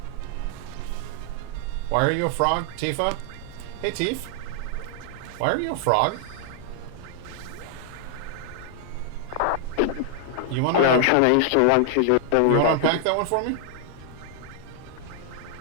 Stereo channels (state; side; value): different; both; correlation 0.00